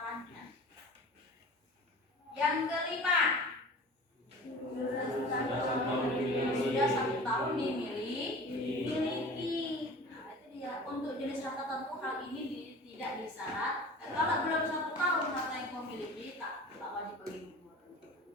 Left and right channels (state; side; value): normal; both; correlation 0.40